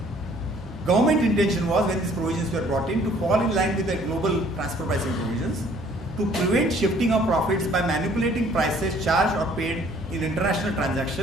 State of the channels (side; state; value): both; normal; correlation 0.58